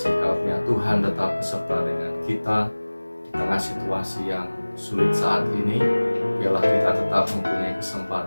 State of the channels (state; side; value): inverted; both; correlation -1.00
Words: karunia Tuhan tetap beserta dengan kita di tengah situasi yang sulit saat ini. Biarlah kita tetap mempunyai